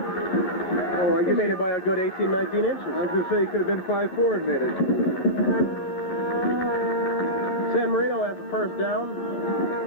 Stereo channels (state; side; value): late; right; 11 ms